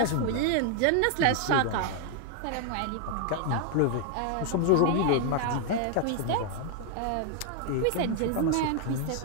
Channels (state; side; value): different; both; correlation 0.00